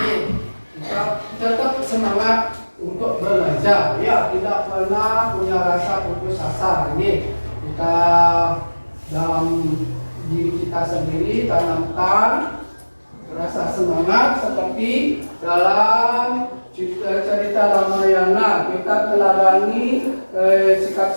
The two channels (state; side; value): inverted; both; correlation -1.00